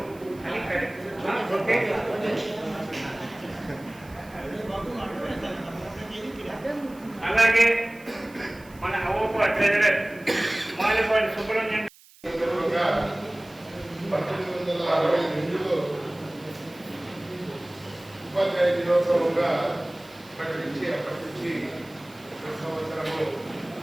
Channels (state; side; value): noise; right; hiss, 25 dB below the sound